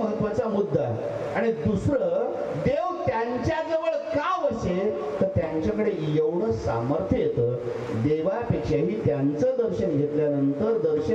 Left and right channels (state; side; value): identical; both; correlation 1.00